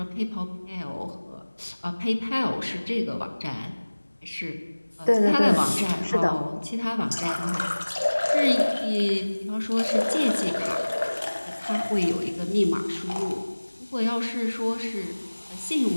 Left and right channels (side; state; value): both; inverted; correlation -1.00